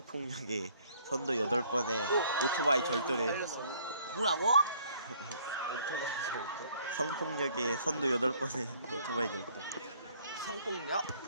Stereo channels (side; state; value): both; inverted; correlation -0.60